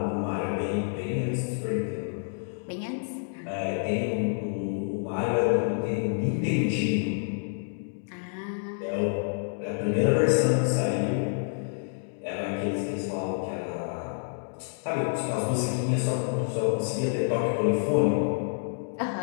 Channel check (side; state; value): right; silent; digital silence